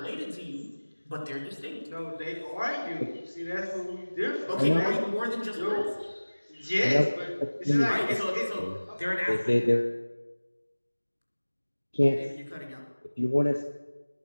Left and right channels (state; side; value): inverted; both; correlation -1.00